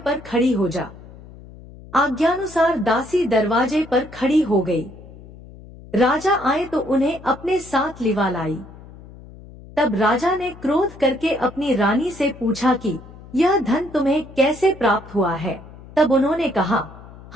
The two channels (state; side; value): noise; left; hum, 19 dB below the sound